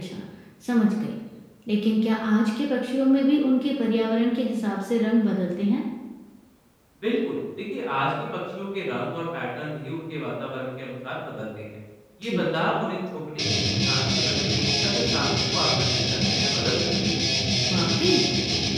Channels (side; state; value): both; identical; correlation 1.00